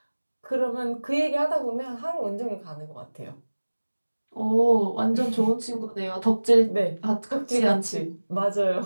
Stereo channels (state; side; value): inverted; both; correlation -1.00